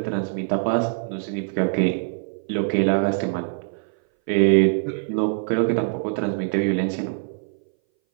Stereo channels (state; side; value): silent; left; 60 dB below the other